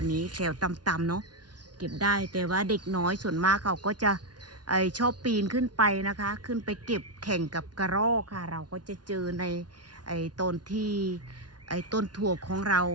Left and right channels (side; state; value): left; late; 0.69 ms